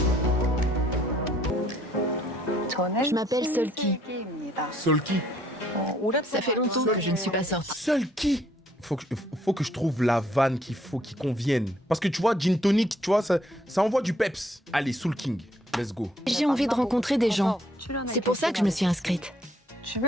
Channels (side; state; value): both; normal; correlation 0.66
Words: Je m'appelle Solki. Solki. Ça fait longtemps que je ne suis pas sortie. Solki. Faut que je trouve la vanne qui convienne. Parce que tu vois, gin tonic, tu vois, ça envoie du peps. Allez, Soul King, let's go. J'ai envie de rencontrer des gens. C'est pour ça que je me suis inscrite.